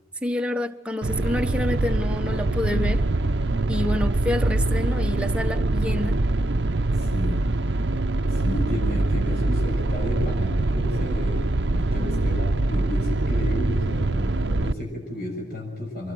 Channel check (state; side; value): normal; both; correlation 0.84